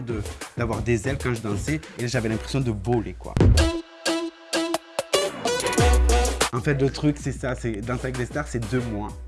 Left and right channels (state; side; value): identical; both; correlation 1.00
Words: d'avoir des ailes quand je dansais. Et j'avais l'impression de voler, quoi. En fait, le truc, c'est ça, c'est Danser avec les stars, c'est 2 mois.